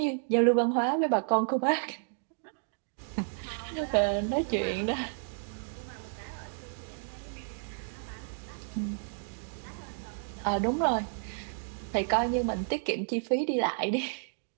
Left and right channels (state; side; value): silent; left; digital silence